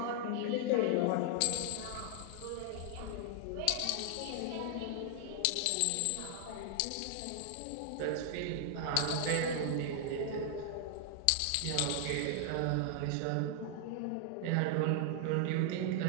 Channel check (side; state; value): both; different; correlation 0.00